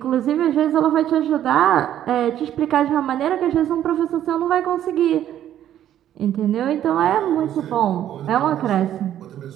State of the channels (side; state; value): left; quieter; 11.4 dB